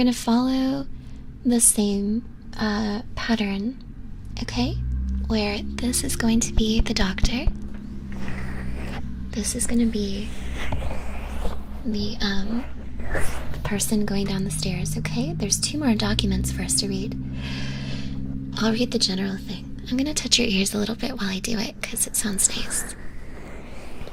follow the same pattern, okay? Where this is going to be the doctor. This is gonna be the person going down the stairs, okay? There's 2 more documents for us to read. I'll read the general thing. I'm gonna touch your ears a little bit while I do it, because it sounds nice.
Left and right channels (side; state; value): both; identical; correlation 1.00